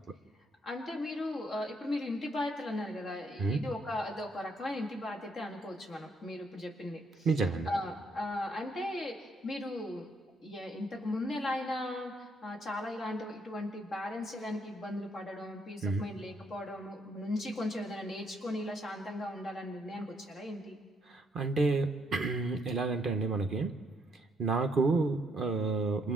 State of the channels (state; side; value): normal; both; correlation 0.72